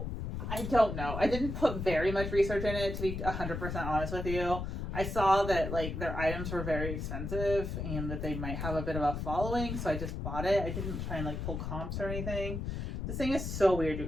I don't know. I didn't put very much research in it, to be 100% honest with you. I saw that like their items were very expensive and that they might have a bit of a following, so I just bought it. I didn't try and like pull comps or anything. This thing is so weird, you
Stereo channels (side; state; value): left; noise; rumble, 4 dB below the sound